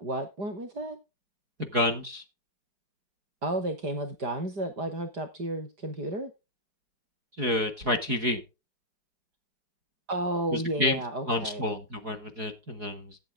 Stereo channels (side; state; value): left; late; 4.7 ms